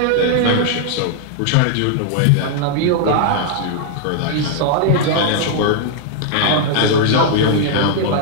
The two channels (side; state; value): both; different; correlation 0.00